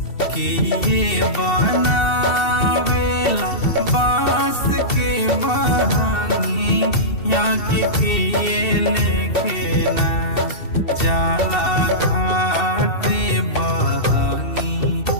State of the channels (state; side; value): late; right; 2.7 ms